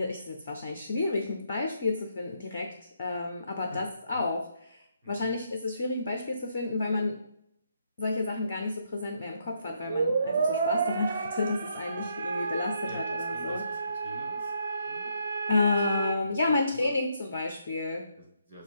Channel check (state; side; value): inverted; both; correlation -0.75